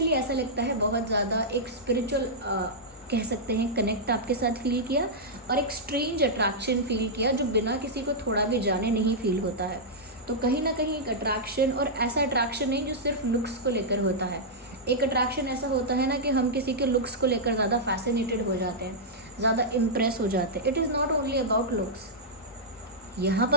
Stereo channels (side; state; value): both; normal; correlation -0.09